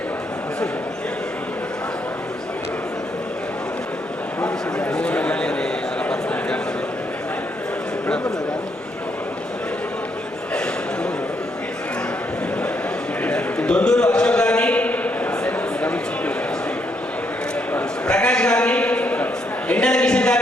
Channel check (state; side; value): normal; both; correlation 0.75